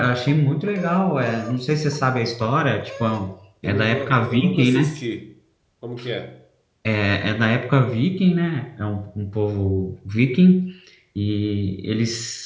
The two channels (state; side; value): identical; both; correlation 1.00